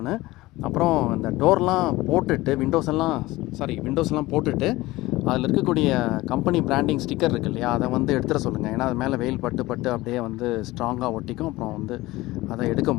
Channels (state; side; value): quieter; right; 19.1 dB